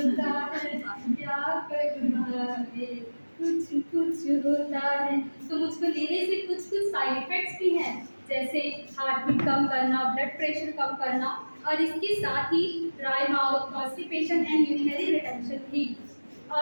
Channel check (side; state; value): both; inverted; correlation -1.00